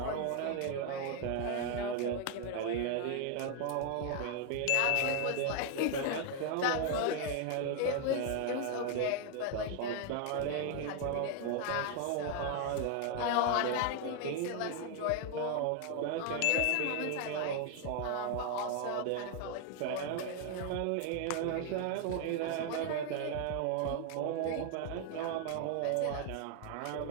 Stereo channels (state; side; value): different; both; correlation 0.00